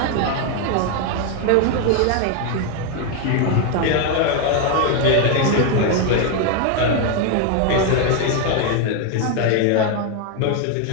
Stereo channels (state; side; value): different; both; correlation 0.01